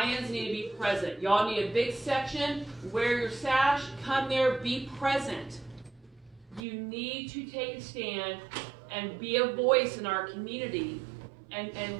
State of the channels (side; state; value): left; drops out; at 6.6 s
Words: need to be present. Y'all need a big section. Wear your sash. Come there. Be present. You need to take a stand and be a voice in our community